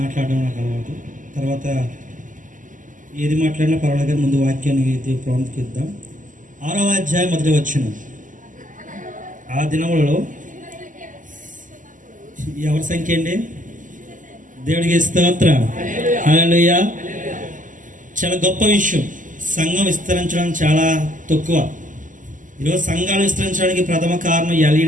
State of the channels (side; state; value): left; late; 0.38 ms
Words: నాకు అలవాటు. తర్వాత ఏది మాట్లాడినా పర్వాలేదు, ముందు వాక్యాన్ని ప్రాముఖ్యత. 6వ అధ్యాయం మొదటి వచనం. ఆ దినములలో ఎవరి సంఖ్య అండి? దేవుడికి స్తోత్రం, హల్లెలూయా. చాలా గొప్ప విషయం. సంఘం విస్తరించడం చాలా తక్కువ. ఈరోజు సంఘాలు విస్తరించడానికి ప్రథమ కారణం